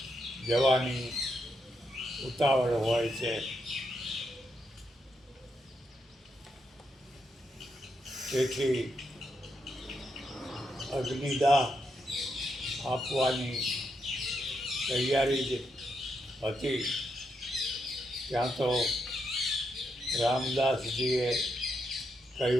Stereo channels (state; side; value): normal; both; correlation 0.81